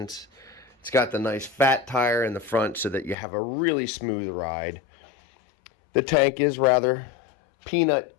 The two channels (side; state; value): right; drops out; at 3.2 s